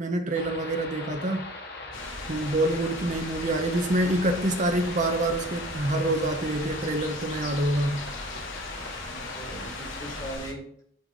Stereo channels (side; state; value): both; normal; correlation 0.45